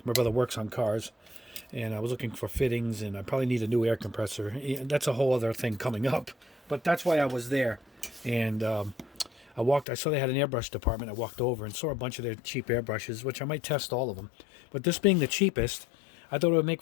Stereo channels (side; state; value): right; drops out; at 9.9 s